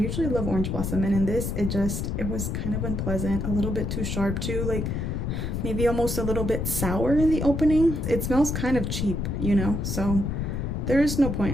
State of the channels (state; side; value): noise; left; rumble, 2 dB below the sound